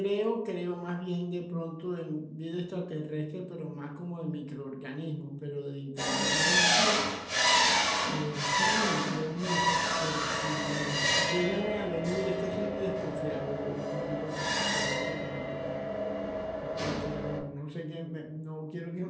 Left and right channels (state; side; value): identical; both; correlation 1.00